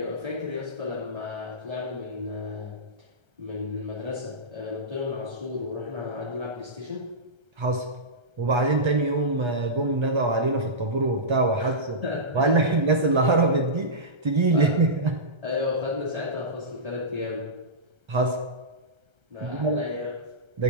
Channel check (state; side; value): late; left; 1.3 ms